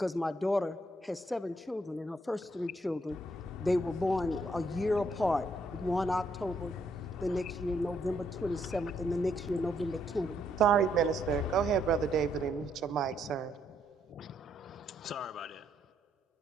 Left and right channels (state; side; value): normal; both; correlation 0.73